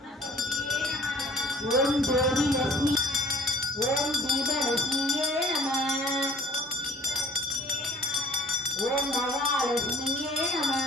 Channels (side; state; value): both; normal; correlation 0.51